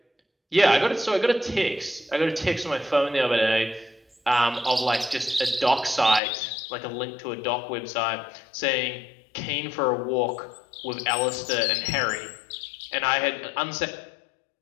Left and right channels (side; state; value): right; drops out; at 6.2 s